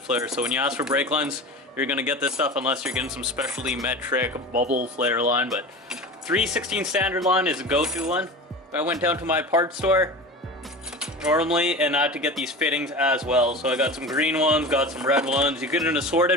So when you ask for brake lines, you're going to get this stuff unless you're getting some specialty metric bubble flare line. But 3/16 standard line is a go-to one. I went down to my parts store normally and I had to get these fittings as well. So I got some green ones, got some red ones. You get an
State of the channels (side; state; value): both; normal; correlation 0.32